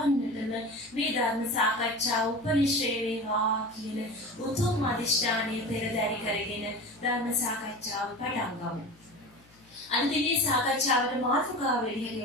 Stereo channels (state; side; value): noise; left; hum, 29 dB below the sound